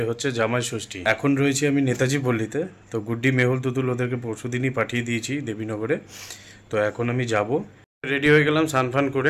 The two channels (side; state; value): both; identical; correlation 1.00